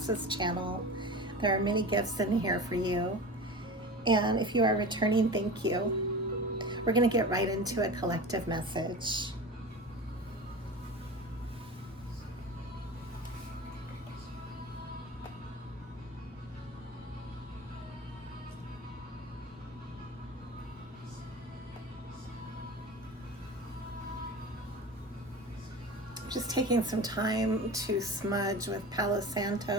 this channel. There are many gifts in here for you. And if you are returning, thank you. We're going to get right into a collective message. Just taking some time to smudge with Palo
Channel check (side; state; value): both; normal; correlation 0.32